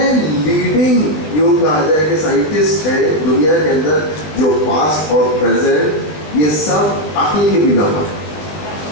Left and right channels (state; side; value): late; right; 20 ms